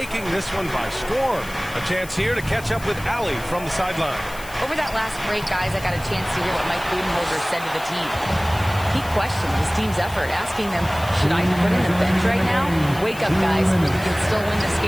this one by storm. A chance here to catch up with Allie from the sideline. Over that last break, guys, I got a chance to hear what Mike Budenholzer said to the team. He questioned his team's effort, asking them, should I be put in the bench right now? Wake up, guys. We can still win this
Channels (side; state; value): left; noise; hiss, 17 dB below the sound